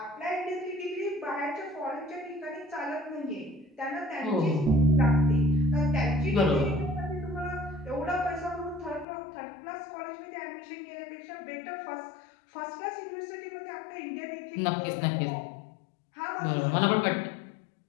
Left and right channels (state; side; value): drops out; right; at 9.1 s